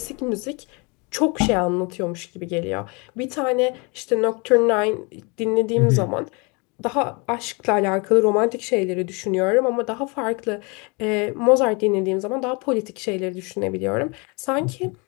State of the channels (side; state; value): right; quieter; 30.2 dB